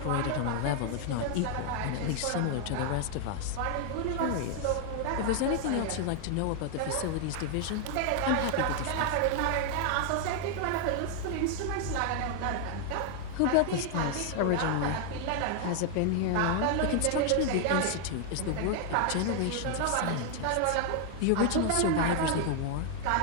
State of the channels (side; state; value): both; different; correlation 0.00